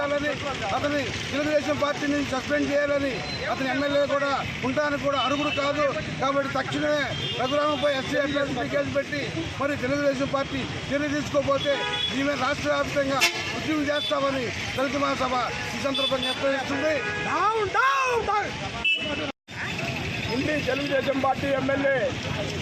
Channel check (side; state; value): both; identical; correlation 1.00